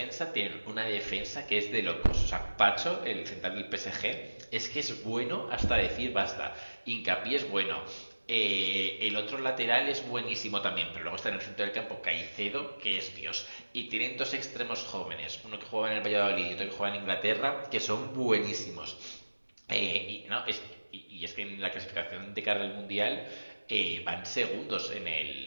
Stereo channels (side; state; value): both; inverted; correlation -1.00